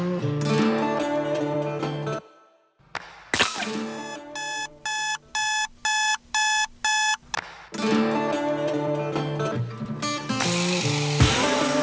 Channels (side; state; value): both; identical; correlation 1.00